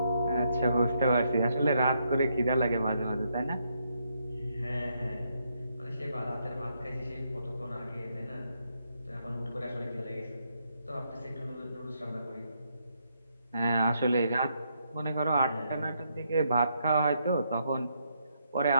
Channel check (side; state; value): both; inverted; correlation -0.77